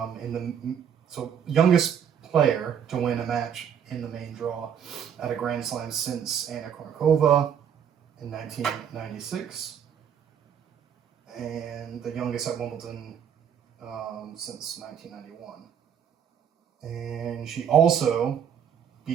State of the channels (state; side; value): quieter; left; 8.3 dB